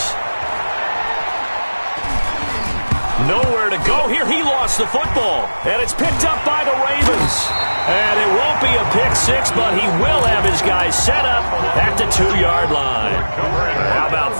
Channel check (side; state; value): both; inverted; correlation -1.00